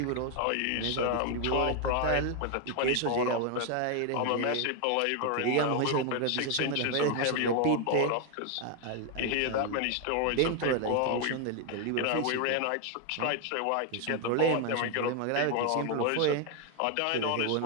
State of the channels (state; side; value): different; both; correlation 0.01